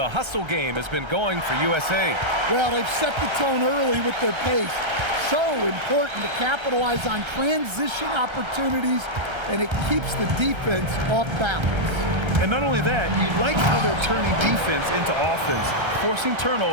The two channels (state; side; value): late; left; 1.3 ms